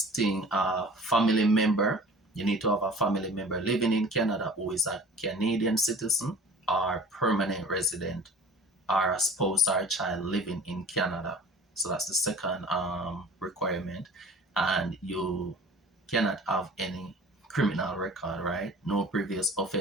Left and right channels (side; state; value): both; normal; correlation 0.44